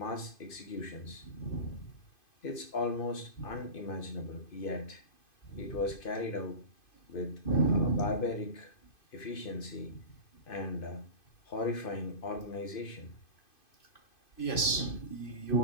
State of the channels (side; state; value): right; late; 2.5 ms